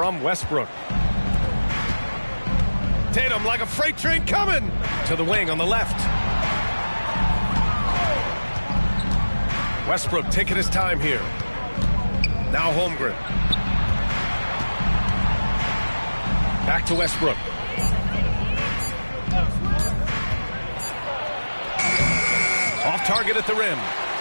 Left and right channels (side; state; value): both; inverted; correlation -1.00